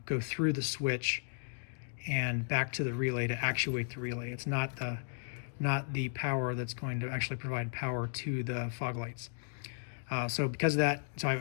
go through the switch and back to the relay to actuate the relay. It's not the power that's going to actually provide power to the fog lights. So because of that, so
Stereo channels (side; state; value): right; silent; digital silence